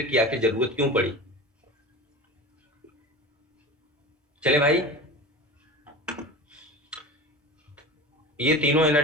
की आखिर जरूरत क्यों पड़ी। चले भाई, ये तीनों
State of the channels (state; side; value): normal; both; correlation 0.31